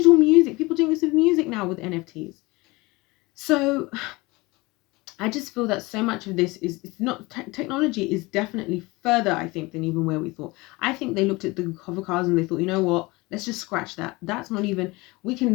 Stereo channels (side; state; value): right; quieter; 23.1 dB